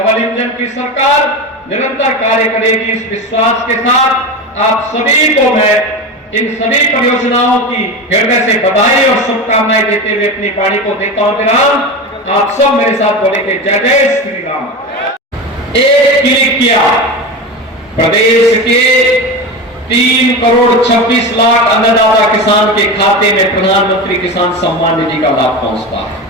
इंजन की सरकार निरंतर कार्य करेगी। इस विश्वास के साथ आप सभी को मैं इन सभी परियोजनाओं की हृदय से बधाई और शुभकामनाएं देते हुए अपनी वाणी को देता हूं विराम। आप सब मेरे साथ बोलेंगे जय जय श्री राम। एक क्लिक किया, प्रदेश के 3 करोड़ 26 लाख अन्नदाता किसान के खाते में प्रधानमंत्री किसान सम्मान निधि का लाभ पहुंचता है।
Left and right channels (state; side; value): normal; both; correlation 0.23